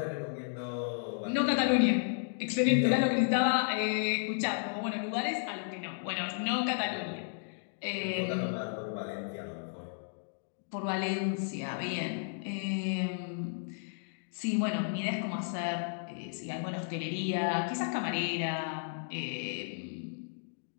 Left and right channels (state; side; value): silent; right; digital silence